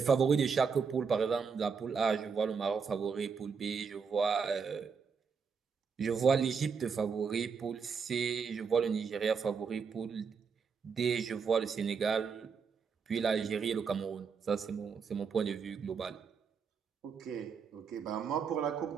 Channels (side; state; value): left; quieter; 5.8 dB